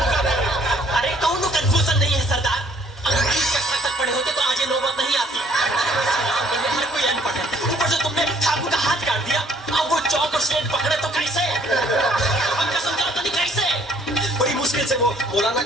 है। अरे कौन कंफ्यूजन नहीं है सरदार। अगर 20 कक्षा तक पढ़े होते तो आज ये नौबत नहीं आती। हर कोई अनपढ़ है, ऊपर से तुमने ठाकुर का हाथ काट दिया। अब वो चौक और स्लेट पकड़े तो कैसे? हम कसम चाहते नहीं कैसे? बड़ी मुश्किल से वो मौलाना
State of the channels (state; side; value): normal; both; correlation 0.61